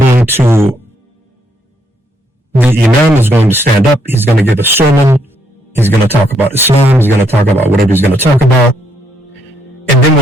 The imam is going to stand up, he's going to give a sermon, he's going to talk about Islam, he's going to talk about whatever he's going to talk about, and then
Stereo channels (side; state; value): both; normal; correlation 0.73